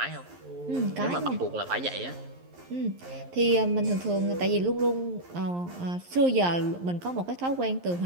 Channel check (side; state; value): left; late; 11 ms